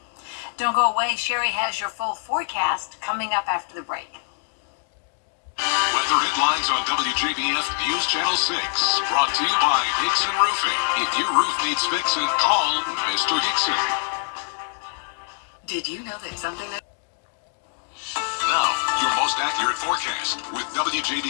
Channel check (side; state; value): right; silent; 58 dB below the other